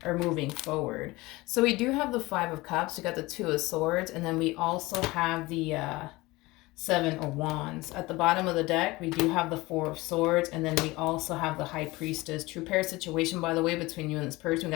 or moving forward? So we do have the Five of Cups, we got the Two of Swords, and then we also have the Seven of Wands. At the bottom of the deck, we do have the Four of Swords, and then we also have the High Priestess. True pair situation, by the way, between you and this person. We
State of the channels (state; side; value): quieter; right; 21.1 dB